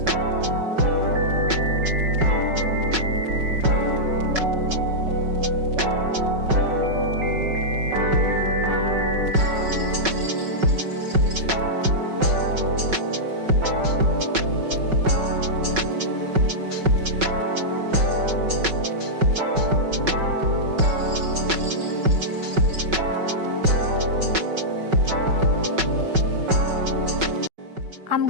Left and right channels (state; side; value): late; left; 5.3 ms